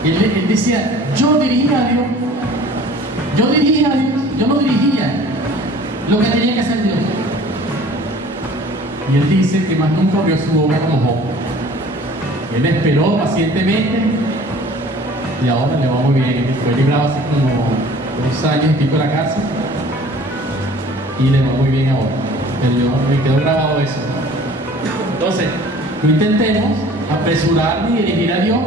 Él decía, yo dirigía a Dios. Yo no dirigía lo que tenía que hacer Dios. Y él dice que más nunca abrió su boca como Job. Él esperó pacientemente y ahora le va muy bien. Fue librado hace como 2 años y pico de la cárcel y le va muy bien ahora. Me quedó grabado eso. Entonces, no intentemos apresurar ni dirigir a Dios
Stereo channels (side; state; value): both; normal; correlation 0.48